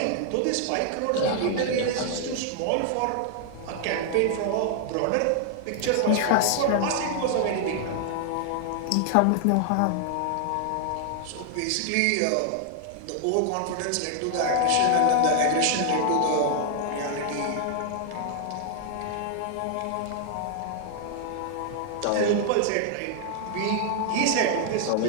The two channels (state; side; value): different; both; correlation 0.00